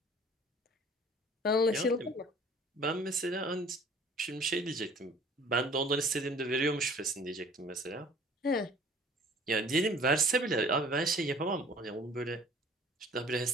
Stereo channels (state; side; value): normal; both; correlation 0.51